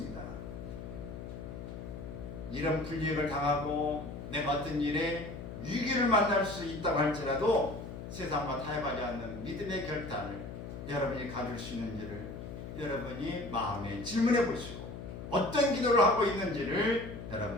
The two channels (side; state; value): left; noise; hum, 9 dB below the sound